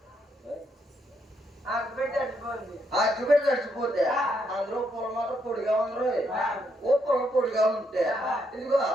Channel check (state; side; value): normal; both; correlation 0.76